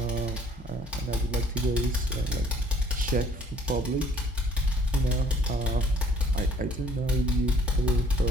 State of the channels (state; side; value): normal; both; correlation 0.60